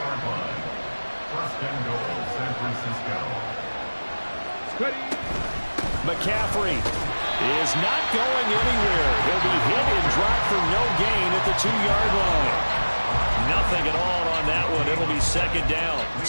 line. 1st and goal, San Francisco. McCaffrey is not going anywhere. He'll be hit and dropped for no gain at the 2-yard line. Nothing at all on that one. It'll be 2nd down.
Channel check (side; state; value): both; inverted; correlation -1.00